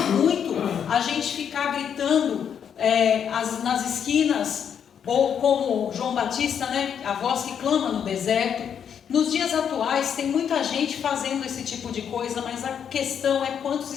a gente ficar gritando nas esquinas, ou como João Batista, né, a voz que clama no deserto. Nos dias atuais tem muita gente fazendo esse tipo de coisa, mas a questão é quantos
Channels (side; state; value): right; quieter; 8.1 dB